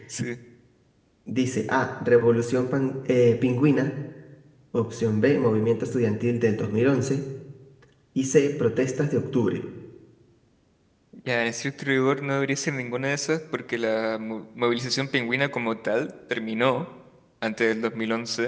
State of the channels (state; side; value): identical; both; correlation 1.00